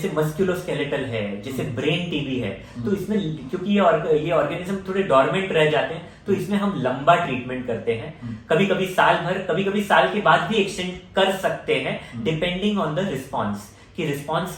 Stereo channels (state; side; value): identical; both; correlation 1.00